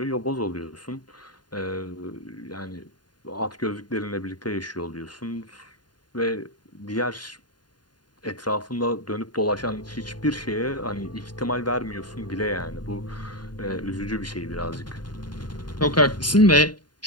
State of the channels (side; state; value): right; late; 0.70 ms